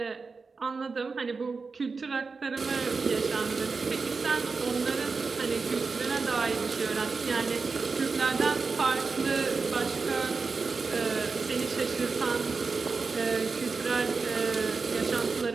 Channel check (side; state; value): left; quieter; 4.5 dB